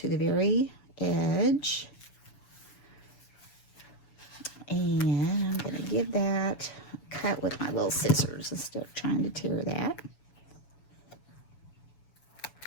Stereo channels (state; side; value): late; right; 7.0 ms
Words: the very edge. And I'm going to give that a cut with my little scissors instead of trying to tear that.